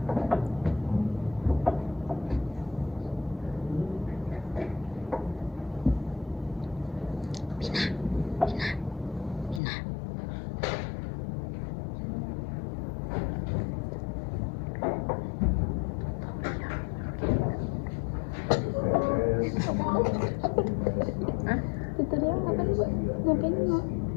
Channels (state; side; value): drops out; right; at 9.6 s